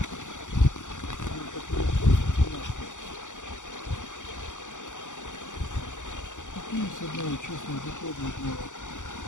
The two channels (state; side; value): late; right; 0.86 ms